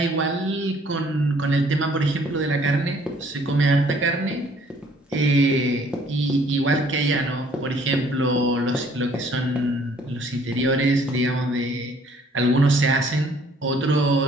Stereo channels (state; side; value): normal; both; correlation 0.60